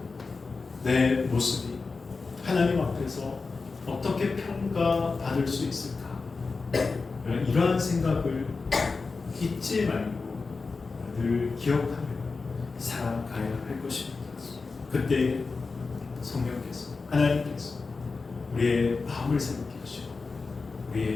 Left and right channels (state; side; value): quieter; right; 4.2 dB